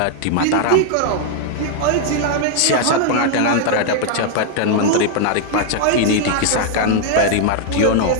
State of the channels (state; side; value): different; both; correlation 0.00